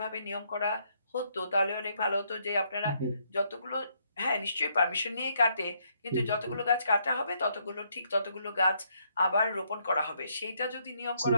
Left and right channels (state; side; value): inverted; both; correlation -0.73